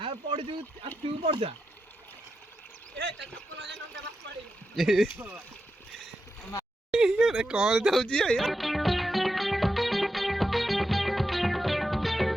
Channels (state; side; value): normal; both; correlation 0.87